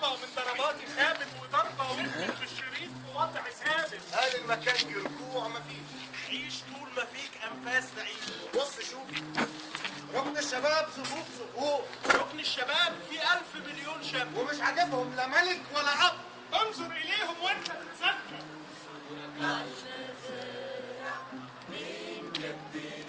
من ضرباتي خابت وضربه وقفت في الشريط في وضع ثابت. هل المكان في رجوع مفيش؟ عيش طول ما فيك انفاس تعيش. بص شوف ركن الشباب صفوف صفوف. ركن الشباب في 1000 مليون شاب ومش عاجبهم لا ملك ولا اب. انظر اليهم وانت تتذكر.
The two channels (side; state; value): both; identical; correlation 1.00